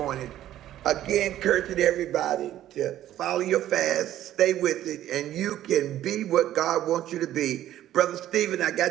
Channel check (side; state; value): left; quieter; 12.7 dB